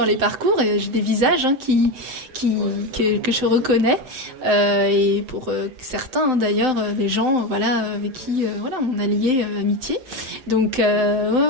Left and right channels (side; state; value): left; late; 7.7 ms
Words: les parcours, et j'ai des visages que je reconnais, et pour certains d'ailleurs, des gens avec qui on a lié amitié. Donc